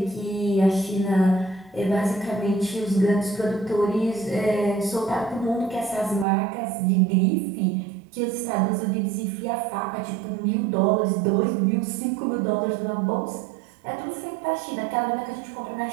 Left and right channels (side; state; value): left; drops out; at 6.2 s